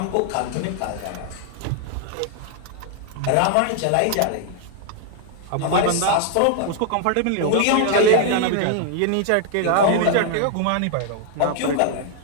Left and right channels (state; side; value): different; both; correlation 0.00